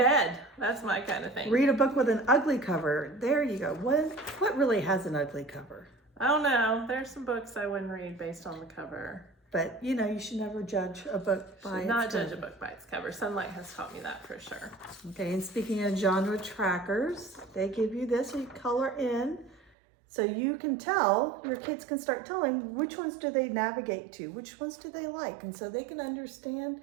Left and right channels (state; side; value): drops out; left; at 19.7 s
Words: That's my kind of thing. Read a book with an ugly cover. There you go. What really has an ugly cover? I don't know. There's some books I wouldn't read based on the cover. But you know, you should never judge a book by its Not cover. judge a book by its cover. Sonlight has taught me that for sure. Okay, and speaking of genre trackers, they give you this, so you color in. So you can tell, your kids can start telling which ones do they navigate to, which ones do they like, and so they can understand,